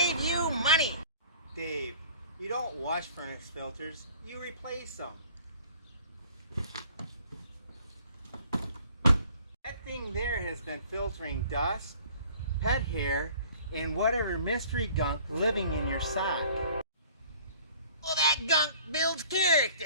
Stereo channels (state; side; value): inverted; both; correlation -0.51